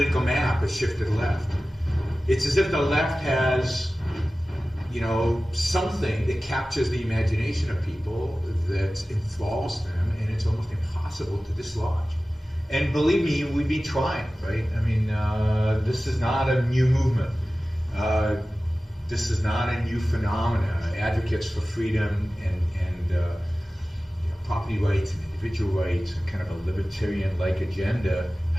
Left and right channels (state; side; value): normal; both; correlation 0.96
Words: map has shifted left. It's as if the left has, something that captures the imagination of people that enthralls them, and it's almost impossible to dislodge. And believe me, we've been trying, right? I mean, this is not a new movement. This is not a new phenomenon. Advocates for freedom and property rights and individual rights and kind of a libertarian-like agenda